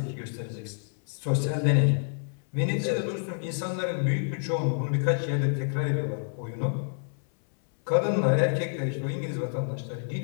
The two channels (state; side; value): silent; right; 59 dB below the other